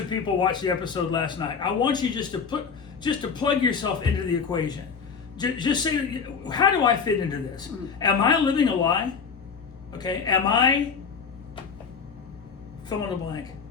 people watch the episode last night. I want you just to plug yourself into the equation. Just say, how do I fit into this? Am I living a lie? Okay? Am I fill in the blank?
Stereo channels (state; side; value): quieter; right; 5.9 dB